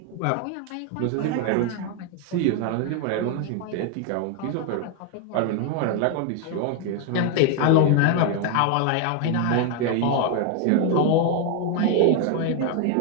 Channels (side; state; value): both; different; correlation 0.01